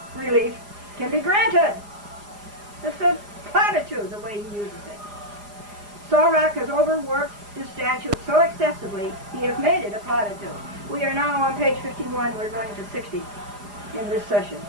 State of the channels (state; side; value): late; left; 4.9 ms